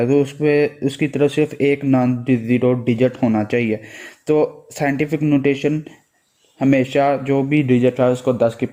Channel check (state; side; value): identical; both; correlation 1.00